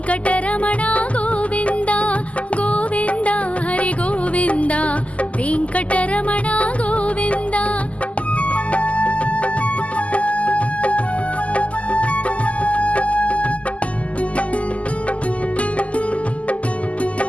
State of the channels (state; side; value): late; right; 0.066 ms